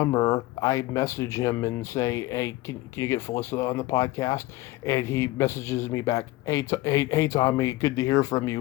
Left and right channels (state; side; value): quieter; right; 18.6 dB